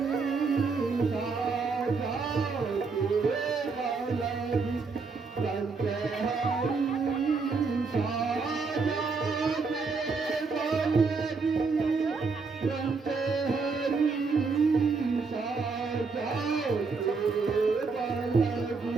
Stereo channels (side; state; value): left; quieter; 4.5 dB